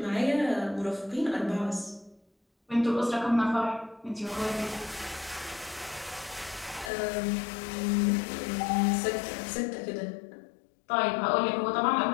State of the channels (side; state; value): right; drops out; at 6.9 s